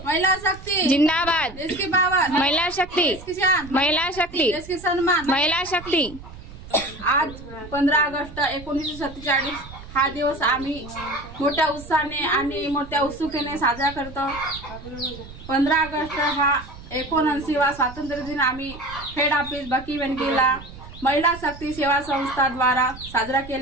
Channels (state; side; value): noise; right; rumble, 16 dB below the sound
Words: महिला शक्ति जिंदाबाद। देश की पावर। महिला शक्ति। देश की शान। महिला शक्ति। देश की सम्मान। महिला शक्ति। आज 15 ऑगस्ट 1947 हा दिवस आम्ही मोठ्या उत्साहाने आणि मोठ्या उत्सुकतेने साजरा करतो। 15 ऑगस्ट हा 79वा स्वातंत्र्य दिन आम्ही हेड ऑफिस बकीवेंकीला महिला शक्ती सेवा संस्था द्वारा साजरा